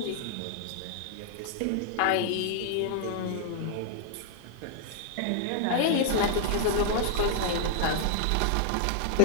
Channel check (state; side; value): different; both; correlation -0.01